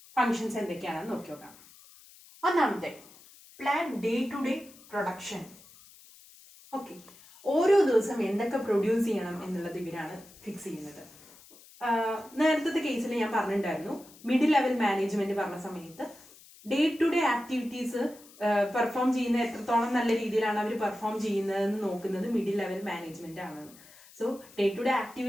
ഫങ്ഷൻസ് എന്തൊക്കെയാണെന്ന് നോക്കി നോക്കാം. ഒന്നാമത്തെ plan day to day production. Okay, ഓരോ ദിവസം എന്തൊക്കെ പ്രൊഡ്യൂസ് ചെയ്യണം എന്നുള്ളത് ഇവരാണ് ഫിക്സ് ചെയ്യുന്നത്. നേരത്തെ കേസിൽ ഞാൻ പറഞ്ഞിട്ടുണ്ടായിരുന്നു, മിഡിൽ ലെവൽ മാനേജ്മെന്റ് പറഞ്ഞ സമയത്ത് day to day activities perform ചെയ്യുന്ന എത്രത്തോളം നല്ല രീതിയിലാണ് അവർ പെർഫോം ചെയ്യുന്നതെന്ന് നോക്കുന്നത് മിഡിൽ ലെവൽ മാനേജ്മെന്റ് ആണ്. So day to day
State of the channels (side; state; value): left; noise; hiss, 23 dB below the sound